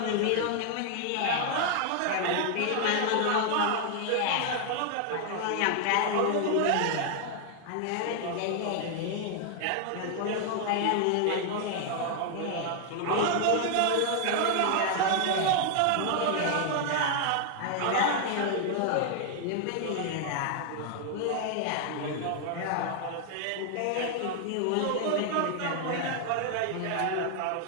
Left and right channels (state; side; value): different; both; correlation 0.00